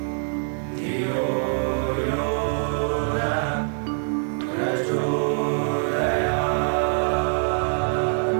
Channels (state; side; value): silent; left; 58 dB below the other